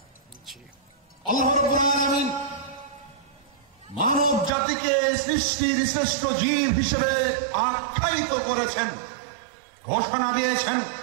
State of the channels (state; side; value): drops out; left; at 4.5 s